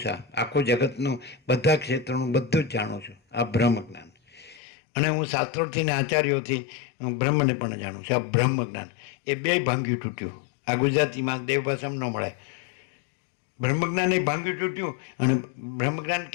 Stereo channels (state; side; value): drops out; right; at 4.6 s